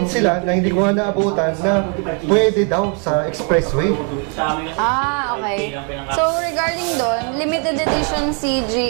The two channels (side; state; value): left; quieter; 38.5 dB